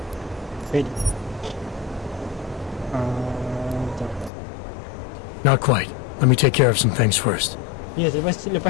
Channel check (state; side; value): drops out; right; at 4.3 s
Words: Ready. Not quite. Let me take care of some things first. Ya, lepas You